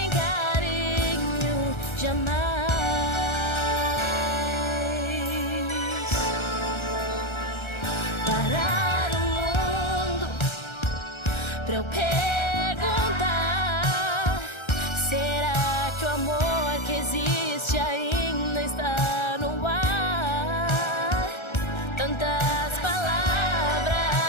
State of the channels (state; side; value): late; right; 1.3 ms